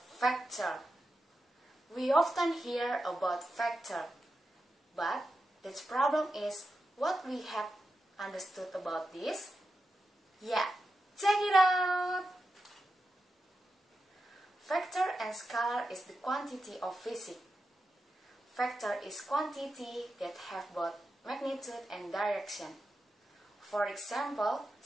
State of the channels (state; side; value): normal; both; correlation 0.90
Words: We often hear about factor, but the problem is what we have understood about this. Yeah, check it out! Factor and scalar is the quantity of physics. Factor is quantity that have both magnitude and direction. For example,